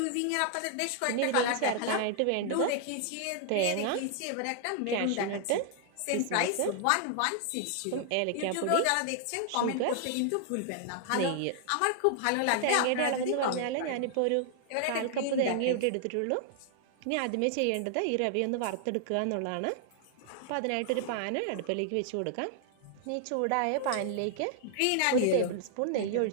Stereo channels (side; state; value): both; different; correlation 0.00